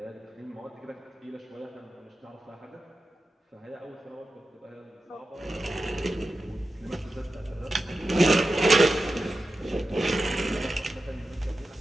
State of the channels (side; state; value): both; normal; correlation 0.92